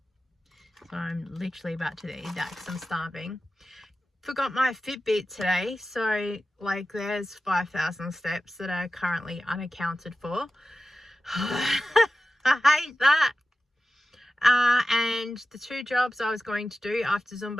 So I'm literally about to eat that because I'm starving. Forgot my Fitbit today, so like there's 5,000 steps that are currently unaccounted for. I hate that. And the 2 jobs I was going to do after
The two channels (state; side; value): normal; both; correlation 0.94